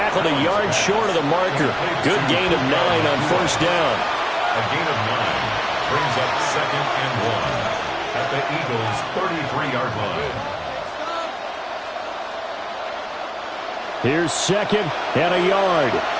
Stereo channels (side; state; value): both; identical; correlation 1.00